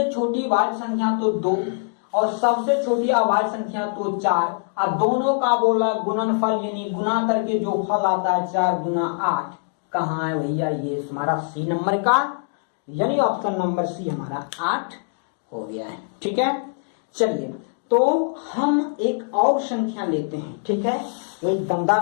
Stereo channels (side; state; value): right; silent; digital silence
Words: छोटी भाज्य संख्या तो 2 और सबसे छोटी अभाज्य संख्या तो 4, और दोनों का बोला गुणनफल यानी गुना करके जो फल आता है 4 गुना 8, कहाँ है भैया, ये हमारा सी नंबर का, यानी ऑप्शन नंबर सी हमारा 8 हो गया है। ठीक है, चलिए तो हम एक और संख्या लेते हैं। ठीक है, एक